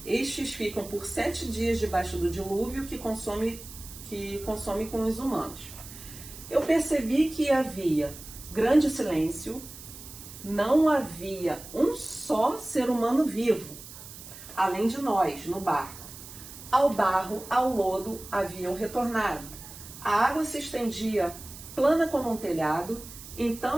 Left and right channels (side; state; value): right; noise; hiss, 15 dB below the sound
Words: Estes ficam por 7 dias debaixo do dilúvio que consome com os humanos. Eu percebi que havia grande silêncio, não havia um só ser humano vivo, além de nós, no barco. Ao barro, ao lodo, haviam retornado. A água se estendia plana como um telhado,